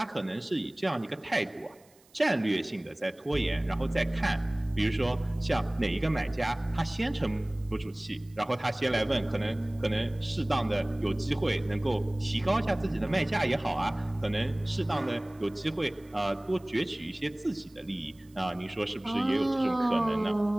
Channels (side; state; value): right; noise; hiss, 30 dB below the sound